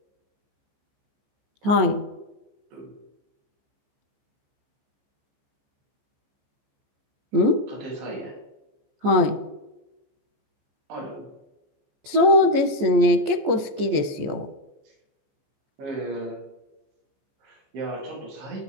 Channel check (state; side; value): late; left; 14 ms